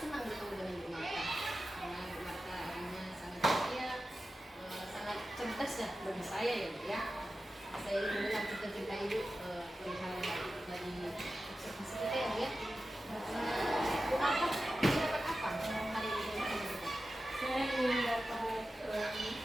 senang bertemu dengan Bu Marta. Karena Bu Marta orangnya sangat ceria, sangat cerdas ya bagi saya ya Bu ya. Saya ingin mendengar cerita-cerita Ibu perihal dari observasi kita ya Bu ya. Bu Marta dapat apa hari ini? Saya ingin dapat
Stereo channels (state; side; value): normal; both; correlation 0.93